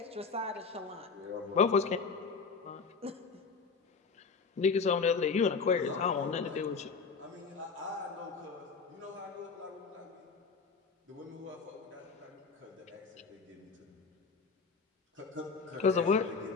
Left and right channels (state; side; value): quieter; right; 5.0 dB